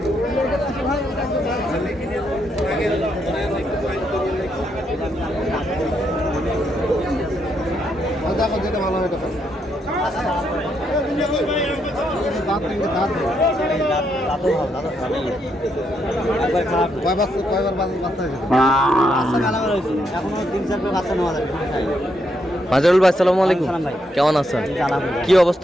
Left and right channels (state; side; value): normal; both; correlation 0.78